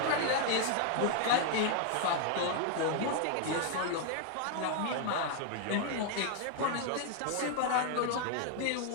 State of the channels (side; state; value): both; different; correlation 0.00